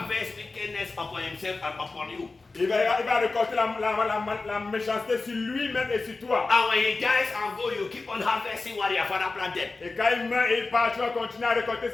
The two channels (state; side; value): quieter; right; 3.7 dB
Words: wickedness upon himself and upon you. il va récolter la méchanceté sur lui-même et sur toi. And when he dies and go, you keep on harvesting what your father planted. Et quand il meurt et il part, tu vas continuer à récolter